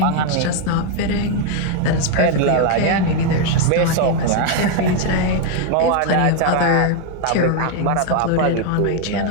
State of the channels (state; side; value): different; both; correlation 0.01